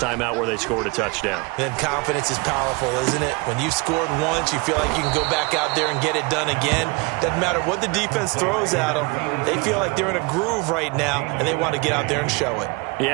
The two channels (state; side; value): quieter; left; 27.5 dB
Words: out where they scored a touchdown. Then confidence is powerful, isn't it? When you've scored once, you feel like you can go back out there and get it done again. Doesn't matter what the defense throws at them. They feel like they're in a groove right now, and they want to get out there and show it.